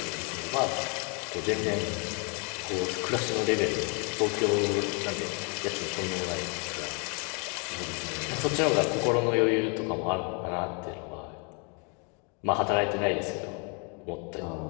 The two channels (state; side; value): quieter; right; 35.2 dB